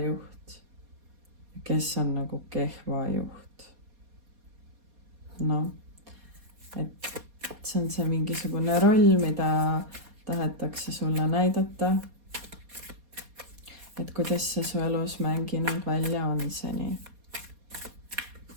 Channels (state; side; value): late; left; 4.2 ms